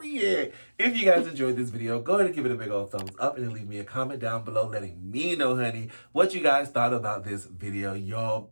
If you guys enjoyed this video, go ahead and give it a big old thumbs up and then leave me a comment down below letting me know, honey, what you guys thought about this video, y'all.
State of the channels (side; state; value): both; inverted; correlation -1.00